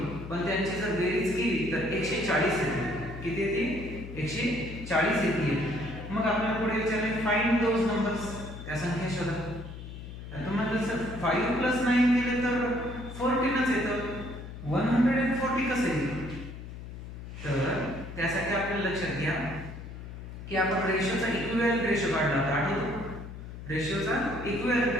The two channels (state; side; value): noise; left; hum, 11 dB below the sound